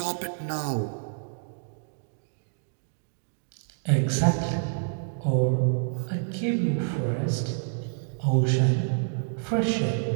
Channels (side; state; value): left; silent; digital silence